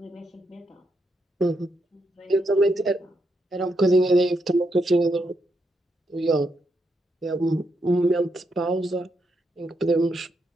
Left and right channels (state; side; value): normal; both; correlation 0.80